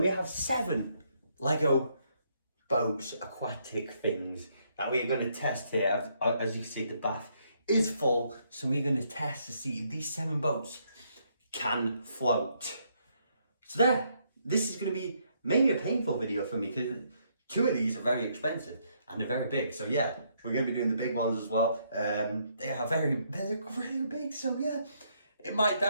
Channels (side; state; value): both; inverted; correlation -0.73